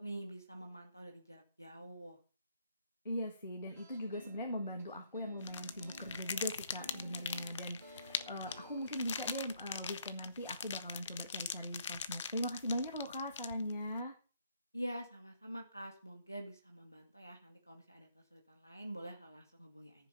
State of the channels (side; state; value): both; inverted; correlation -0.68